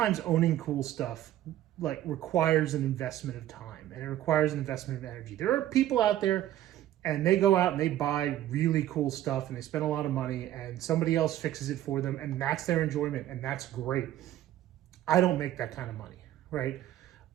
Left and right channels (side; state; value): left; quieter; 13.0 dB